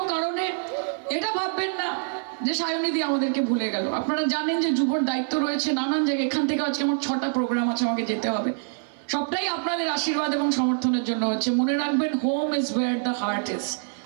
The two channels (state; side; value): silent; left; 61 dB below the other